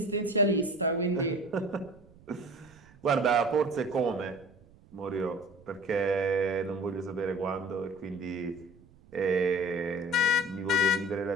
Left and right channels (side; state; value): right; noise; rumble, 26 dB below the sound